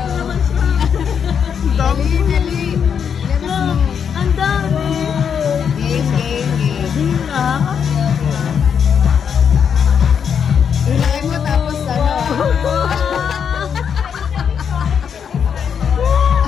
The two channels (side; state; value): right; quieter; 7.4 dB